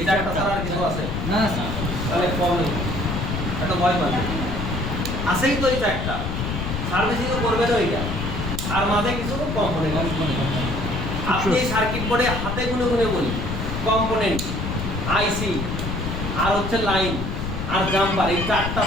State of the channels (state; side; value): noise; left; rumble, 4 dB below the sound